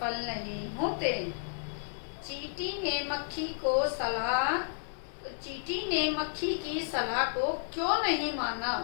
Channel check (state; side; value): silent; right; 56 dB below the other